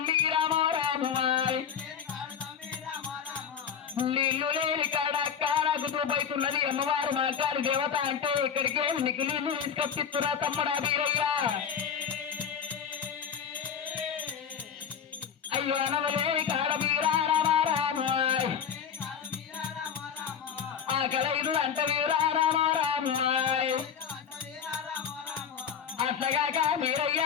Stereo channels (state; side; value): quieter; right; 7.6 dB